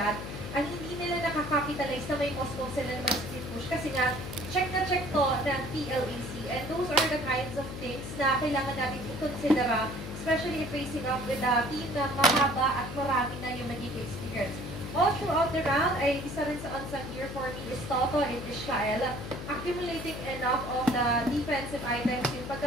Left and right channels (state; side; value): noise; left; hum, 8 dB below the sound